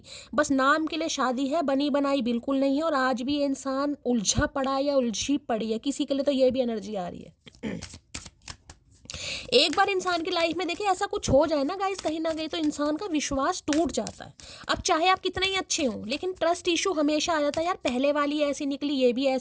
बस नाम के लिए शादी है, बनी बनाई बिल्कुल नहीं है। और आज भी ये इंसान उलझा पड़ा है या उलझी पड़ी है, किसी के लिए तो ये भी एनर्जी आ रही है। एक बार इंसान की लाइफ में देखिए ऐसा कुछ हो जाए ना गाइस, कहीं ना कहीं तो इंसान का विश्वास टूट जाता है। अब चाहे आप कितने ही अच्छे हों, लेकिन ट्रस्ट इशू हमेशा आ जाता है, यार पहले वाली ऐसी निकली, ये भी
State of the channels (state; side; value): identical; both; correlation 1.00